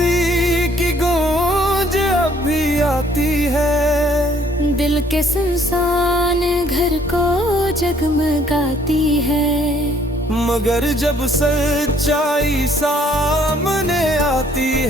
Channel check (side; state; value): both; normal; correlation 0.62